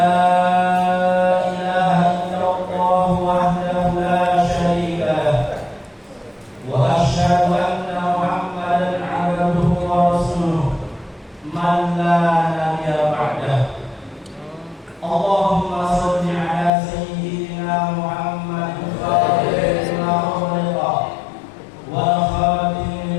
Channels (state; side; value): drops out; right; at 16.7 s